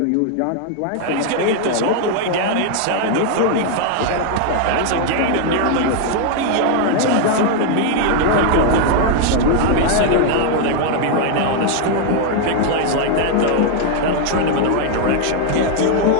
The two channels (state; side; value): different; both; correlation 0.00